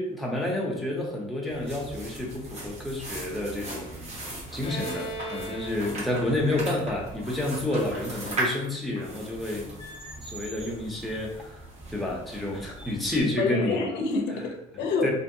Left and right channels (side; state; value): both; normal; correlation 0.53